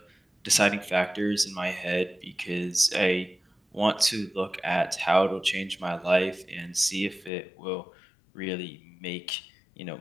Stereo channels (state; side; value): drops out; right; at 7.3 s